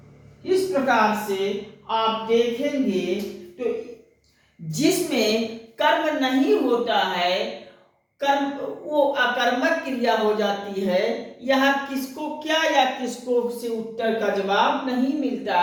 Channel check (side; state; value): both; identical; correlation 1.00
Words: इस प्रकार से आप देखेंगे तो जिसमें कर्म नहीं होता है, कर्म वो अकर्मक क्रिया हो जाती है। यहाँ किसको क्या या किसको से उत्तर का जवाब नहीं मिलता